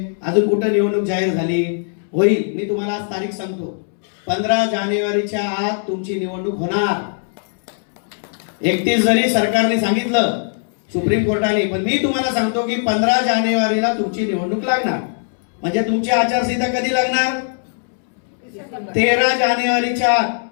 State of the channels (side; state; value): right; silent; 66 dB below the other